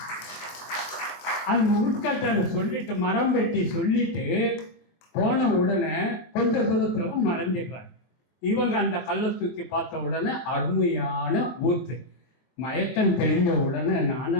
அந்த உட்கட்டை சொல்லிட்டு மரம் வெட்டி சொல்லிட்டு போன உடனே கொஞ்ச தூரத்துல மறைஞ்சிடுறாரு. இவங்க அந்த கல்லை தூக்கி பார்த்த உடனே அருமையான ஊத்து. மயக்கம் தெரிஞ்ச உடனே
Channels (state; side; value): late; right; 23 ms